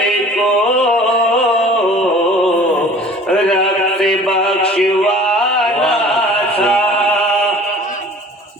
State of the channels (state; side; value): normal; both; correlation 0.47